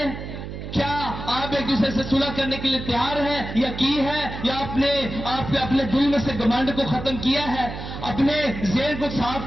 کیا آپ ایک دوسرے سے صلح کرنے کے لیے تیار ہیں یا کی ہے؟ یا آپ نے اپنے دل میں سے گمنڈ کو ختم کیا ہے, اپنے ذہن کو صاف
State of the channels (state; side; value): noise; right; hum, 8 dB below the sound